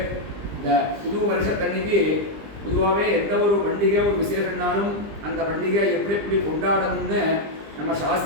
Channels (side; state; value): left; late; 20 ms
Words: இந்த புது வருஷத்தன்னைக்கு பொதுவாகவே எந்த ஒரு பண்டிகை ஒரு விசேஷம்னாலும் அந்த பண்டிகை எப்படி எப்படி கொண்டாடணும்னு நம்ம